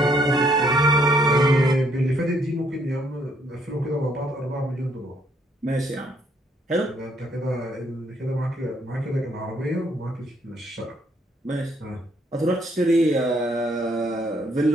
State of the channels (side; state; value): both; normal; correlation 0.69